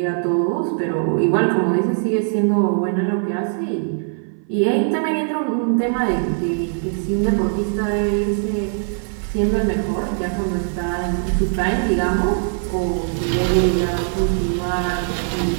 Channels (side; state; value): left; silent; 58 dB below the other